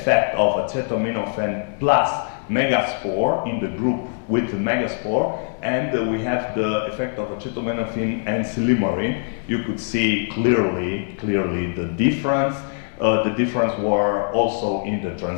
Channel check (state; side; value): silent; right; digital silence